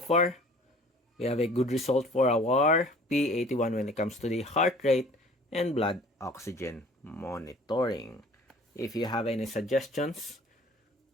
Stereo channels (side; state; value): both; normal; correlation 0.49